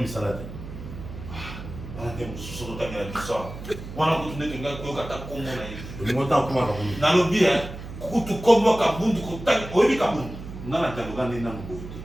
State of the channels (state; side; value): noise; right; hum, 11 dB below the sound